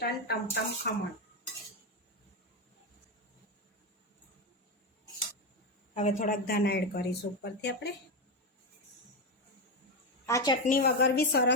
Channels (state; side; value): normal; both; correlation 0.11